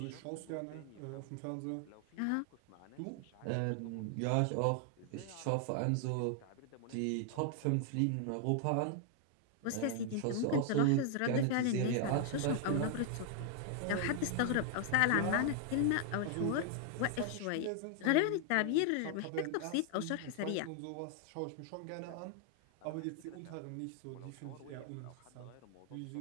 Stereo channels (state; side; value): different; both; correlation 0.00